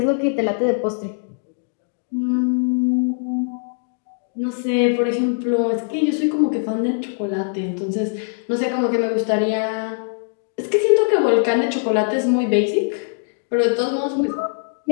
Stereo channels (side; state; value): right; silent; digital silence